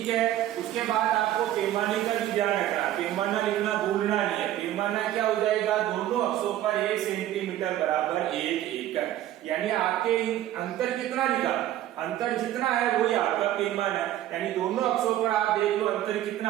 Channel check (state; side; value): quieter; left; 13.1 dB